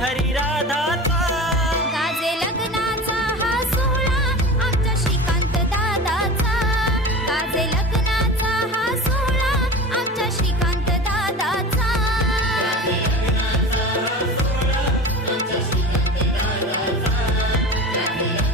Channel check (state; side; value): normal; both; correlation 0.32